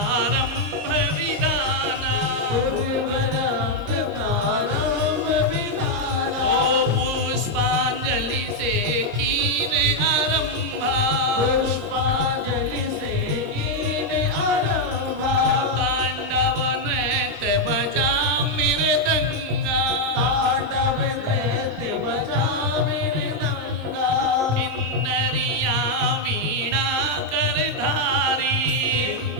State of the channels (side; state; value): both; normal; correlation 0.00